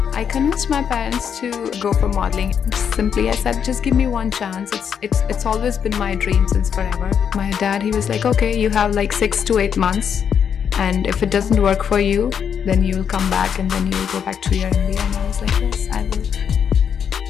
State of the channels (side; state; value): right; quieter; 7.7 dB